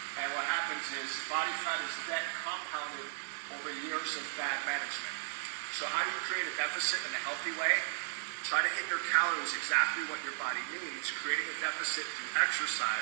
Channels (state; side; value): silent; left; digital silence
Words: and what happens is body fat is debt compounded over years of bad management. So how do you create a deficit in a healthy way? Try to hit your calories exactly what your body needs. Creating a deficit through